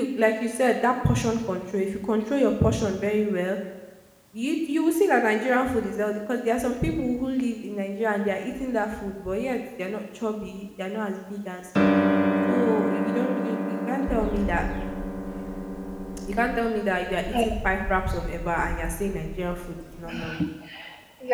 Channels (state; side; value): identical; both; correlation 1.00